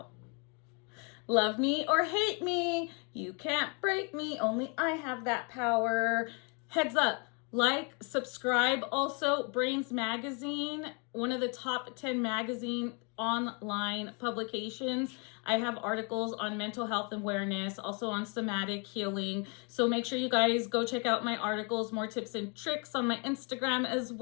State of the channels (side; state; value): right; quieter; 34.9 dB